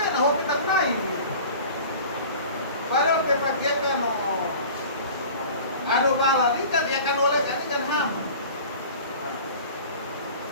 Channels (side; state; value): both; inverted; correlation -0.41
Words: na hobi tak naik. Padahal pepakai kan ada bala ikan ya kan oleh kan ikan ham.